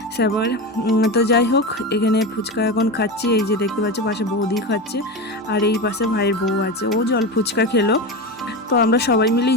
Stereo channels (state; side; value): normal; both; correlation 0.21